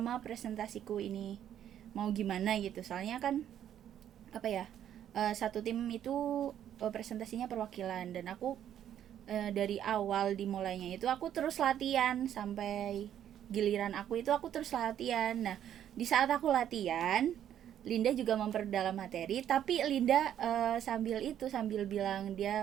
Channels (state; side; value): quieter; left; 10.4 dB